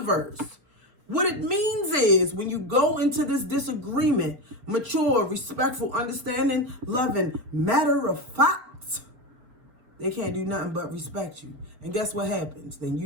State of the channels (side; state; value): left; late; 4.4 ms